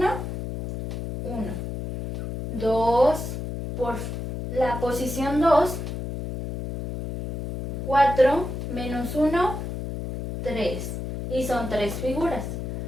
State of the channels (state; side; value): noise; left; hum, 5 dB below the sound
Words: 1. 2 por la posición 2, 4 menos 1, 3. Y son 3 figuras.